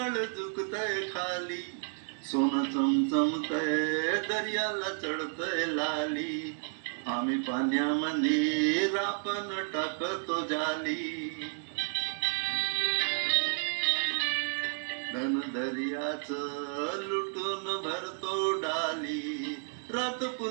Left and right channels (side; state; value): left; silent; 57 dB below the other